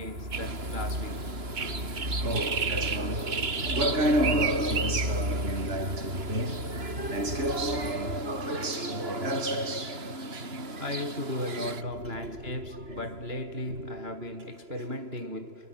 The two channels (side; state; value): left; late; 2.9 ms